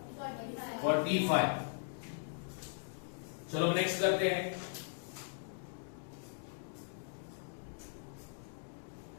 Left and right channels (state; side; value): silent; right; digital silence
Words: 45। चलो नेक्स्ट करते हैं।